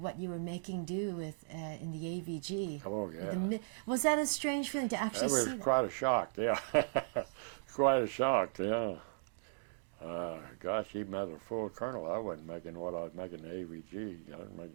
you were making do with in the AVG? Oh, yeah. Was that a strange feeling to actually see? That was quite a shock, yeah. Quite a shock, yeah. Gosh, even as a full colonel, I wasn't making what I was making the AVG. I was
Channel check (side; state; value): left; silent; digital silence